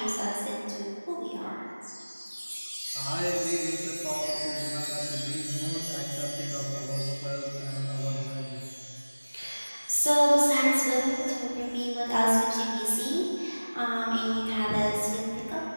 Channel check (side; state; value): both; inverted; correlation -1.00